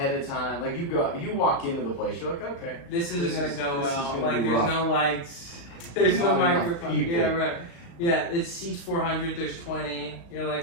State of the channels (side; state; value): right; late; 35 ms